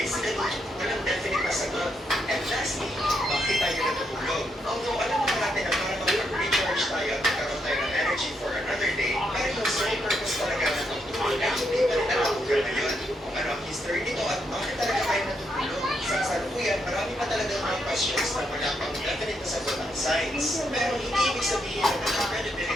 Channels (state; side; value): normal; both; correlation 0.79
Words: walang definite na sagot. And lastly, bakit tayo natutulog? Although alam naman natin na para mag-recharge tayo at magkaroon tayo ng energy for another day, pero yung sole purpose talaga ng pagtulog ay hindi pa rin natutulog na yun. Kung ano ang history nito at bakit talaga tayo natutulog? Sa kasalukuyan, marami pa talaga mga questions na wala pang definite na sagot ng science. Pero hindi ibig sabihin na